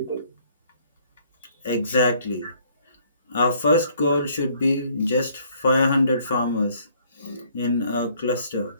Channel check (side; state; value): both; inverted; correlation -0.62